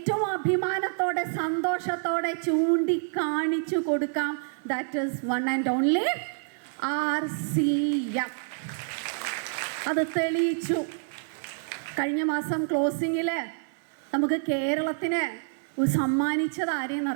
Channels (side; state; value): left; silent; digital silence